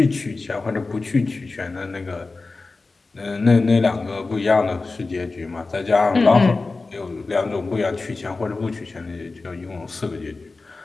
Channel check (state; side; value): quieter; right; 3.7 dB